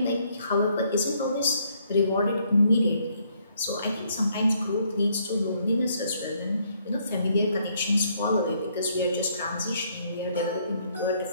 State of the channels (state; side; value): inverted; both; correlation -0.69